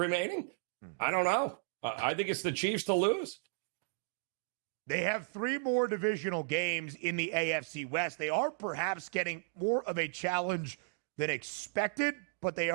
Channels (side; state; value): left; silent; digital silence